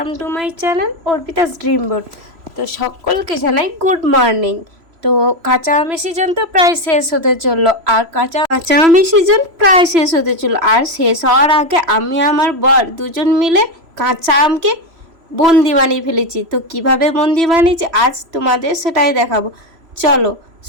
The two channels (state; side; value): late; left; 3.0 ms